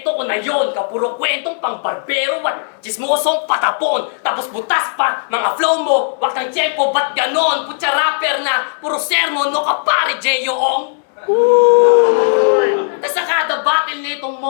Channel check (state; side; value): silent; right; digital silence